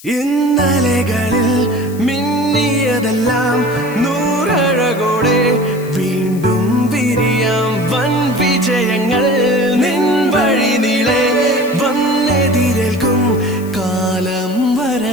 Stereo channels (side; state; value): left; noise; hiss, 20 dB below the sound